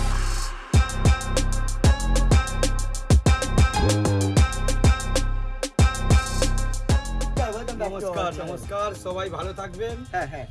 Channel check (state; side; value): identical; both; correlation 1.00